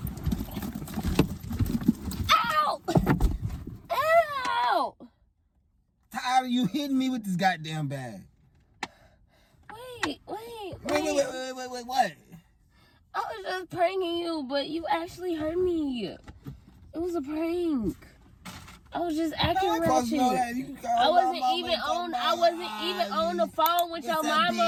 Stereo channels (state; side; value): identical; both; correlation 1.00